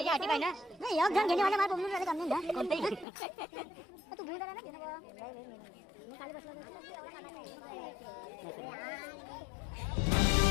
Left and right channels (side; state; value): right; drops out; at 3.1 s